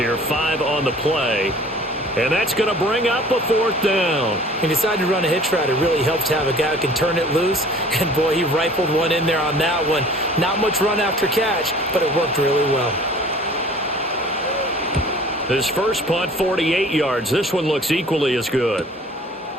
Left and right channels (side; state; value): both; normal; correlation 0.49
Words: 5 on the play. And that's going to bring up a 4th down. He decided to run a hitch route. It really helps to have a guy who can turn it loose. And, boy, he rifled one in there on that one. Not much run after catch, but it worked really well. His first punt, 48 yards. This one looks equally as good.